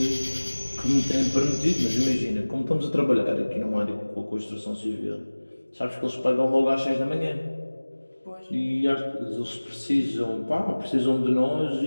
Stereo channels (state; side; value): inverted; both; correlation -1.00